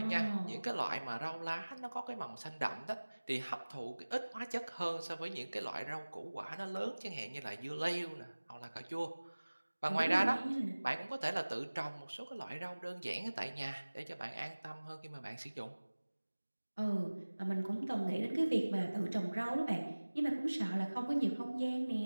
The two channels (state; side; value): inverted; both; correlation -1.00